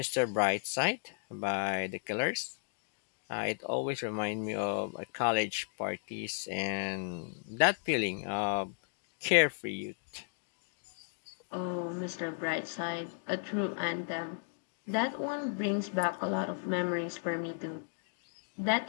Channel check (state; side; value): silent; right; 55 dB below the other